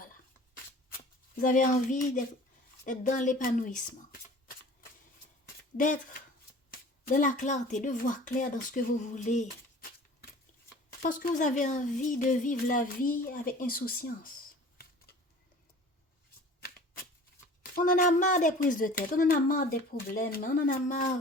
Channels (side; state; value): both; normal; correlation 0.45